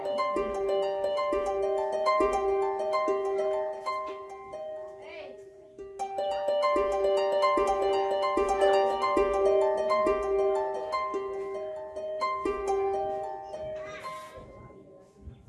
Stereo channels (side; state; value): both; identical; correlation 1.00